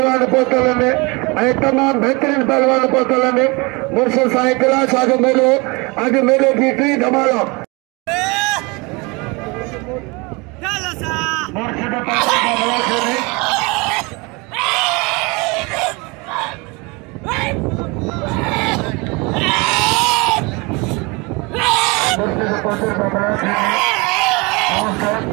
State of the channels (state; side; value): quieter; left; 27.1 dB